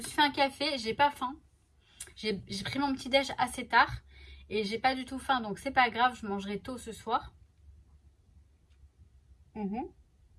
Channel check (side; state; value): both; identical; correlation 1.00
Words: suis fait un café, j'ai pas faim. J'ai pris mon petit déj assez tard et j'ai pas du tout faim, donc c'est pas grave, je mangerai tôt ce soir.